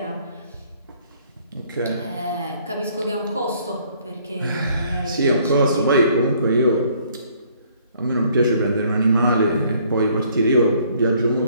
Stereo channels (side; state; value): both; inverted; correlation -0.62